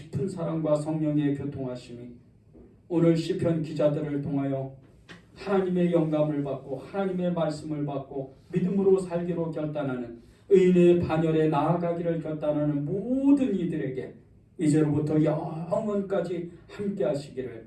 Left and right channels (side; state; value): both; identical; correlation 1.00